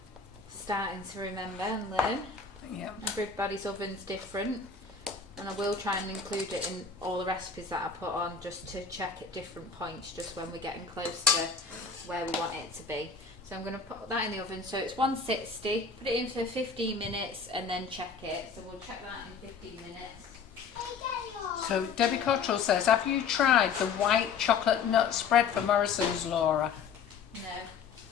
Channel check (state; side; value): quieter; right; 5.6 dB